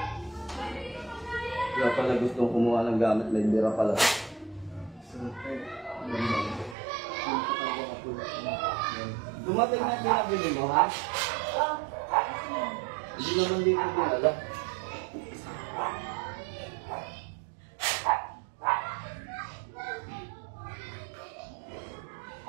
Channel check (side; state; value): left; drops out; at 6.8 s